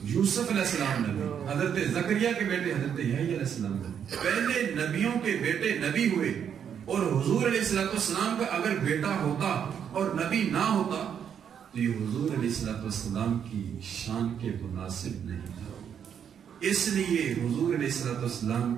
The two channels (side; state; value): left; quieter; 8.2 dB